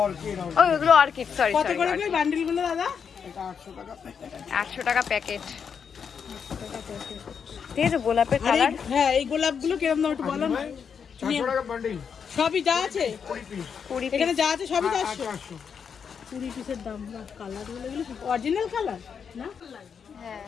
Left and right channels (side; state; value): right; quieter; 6.8 dB